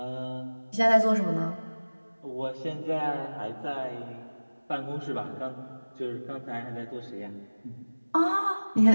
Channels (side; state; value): both; inverted; correlation -1.00